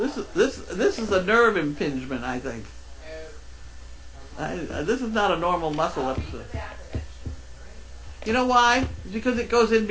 is a nerve impingement, I think. This is not a normal muscle I'll read the episode. back of it. You know why? Because it goes in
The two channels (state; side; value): identical; both; correlation 1.00